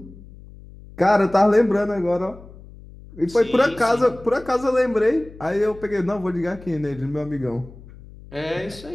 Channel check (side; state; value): left; noise; hum, 19 dB below the sound